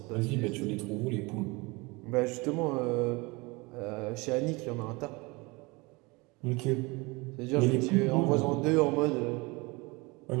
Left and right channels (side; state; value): left; quieter; 25.5 dB